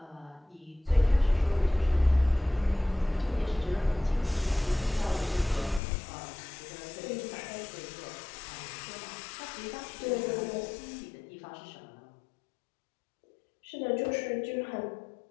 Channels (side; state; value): right; drops out; at 5.8 s